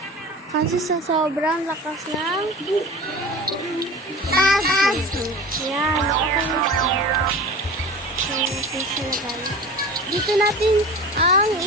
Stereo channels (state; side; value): normal; both; correlation 0.35